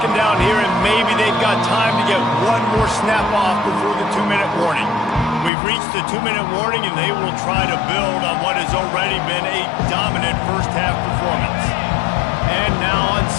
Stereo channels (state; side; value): drops out; right; at 5.5 s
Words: down here, and maybe they've got time to get one more snap off before the 2-minute warning. We've reached the 2-minute warning, and they will try to build on what has already been a dominant first-half performance. And now on